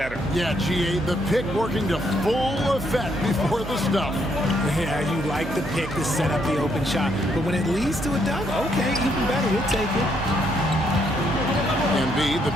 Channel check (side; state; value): right; noise; hum, 11 dB below the sound